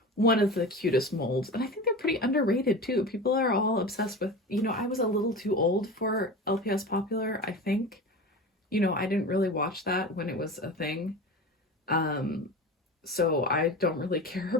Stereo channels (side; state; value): both; normal; correlation 0.30